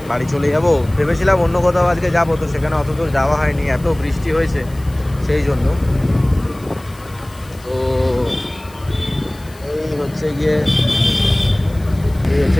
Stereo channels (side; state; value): left; noise; hiss, 25 dB below the sound